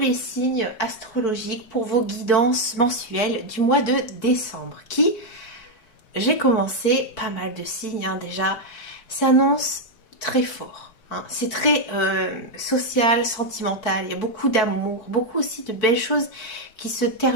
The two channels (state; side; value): late; right; 4.6 ms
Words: signes astrologiques pour vos guidances mensuelles du mois de décembre, qui, j'ai commencé pas mal de signes déjà, s'annonce très fort. Hein. C'est très social, sentimental, il y a beaucoup d'amour, beaucoup aussi de belles choses qui se